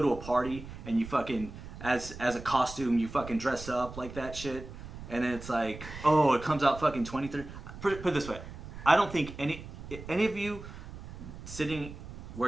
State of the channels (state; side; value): noise; right; rumble, 12 dB below the sound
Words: a party and you fucking as a costume, you fucking dress up like that shit, and then it's like, oh, it comes out fucking 23. Put it this way, I don't think any of you sitting